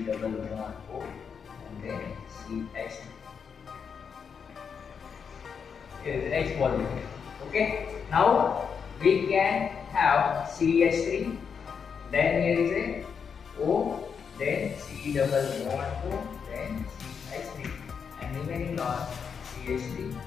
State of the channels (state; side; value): quieter; right; 6.5 dB